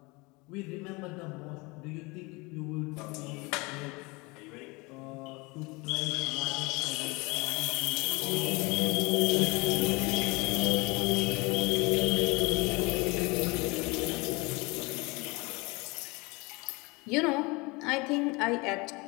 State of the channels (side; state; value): right; quieter; 25.9 dB